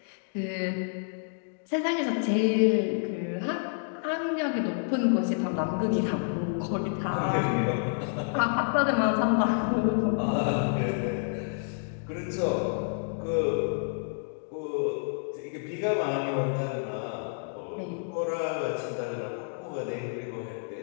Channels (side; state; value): right; silent; digital silence